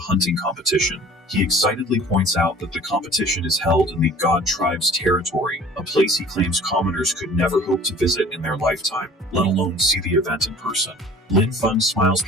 competition. He excitedly points out that the competition is held in the God Tribe's territory, a place he claims commoners could never hope to visit in their lifetime, let alone see the event in person. Lin Feng smiles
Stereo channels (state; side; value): normal; both; correlation 0.47